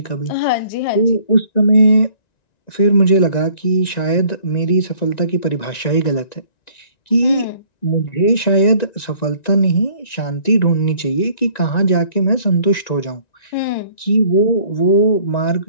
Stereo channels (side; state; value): right; late; 1.9 ms